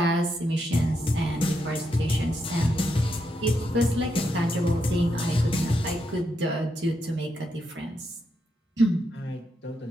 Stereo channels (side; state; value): both; normal; correlation 0.82